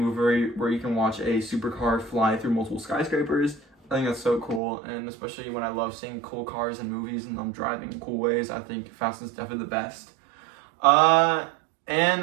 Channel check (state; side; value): drops out; left; at 4.6 s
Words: where you can watch a supercar fly through multiple skyscrapers. I think that's so cool, and especially when I love seeing cool cars in movies and them driving in cool ways, I think Fast is definitely the best. And